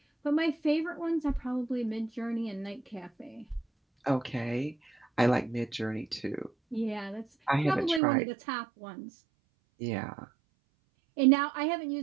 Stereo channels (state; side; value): drops out; left; at 8.0 s